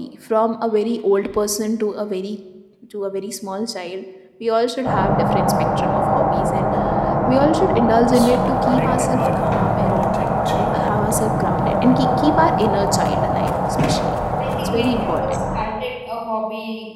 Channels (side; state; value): both; identical; correlation 1.00